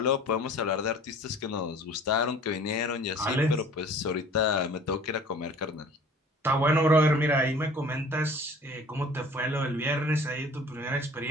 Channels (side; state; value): both; normal; correlation 0.48